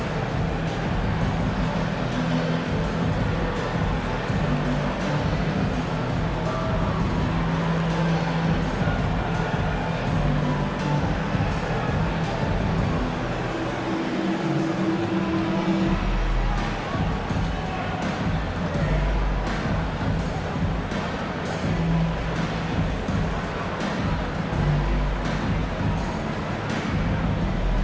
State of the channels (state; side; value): identical; both; correlation 1.00